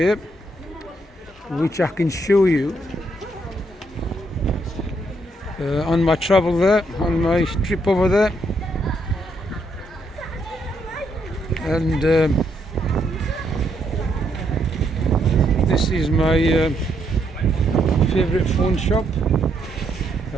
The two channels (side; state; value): both; normal; correlation 0.75